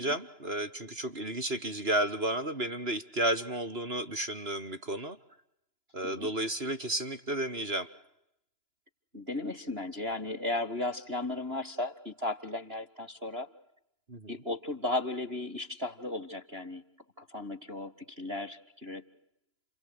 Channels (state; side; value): late; left; 2.9 ms